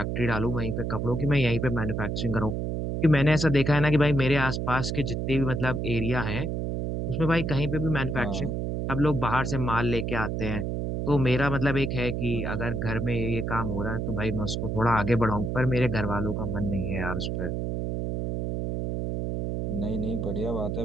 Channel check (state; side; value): noise; right; hum, 1 dB below the sound